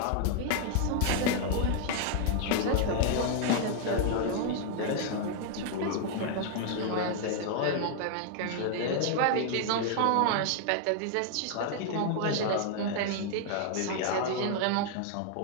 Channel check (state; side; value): different; both; correlation 0.00